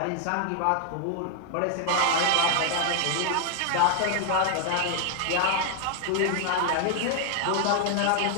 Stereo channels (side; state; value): both; different; correlation 0.00